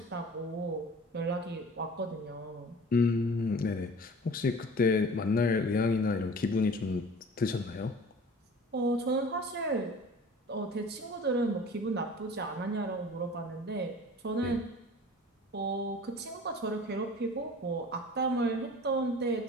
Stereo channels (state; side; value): normal; both; correlation 0.43